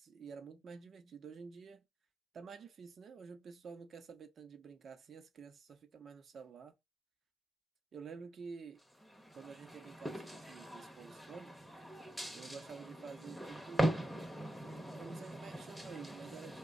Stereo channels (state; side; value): normal; both; correlation 0.89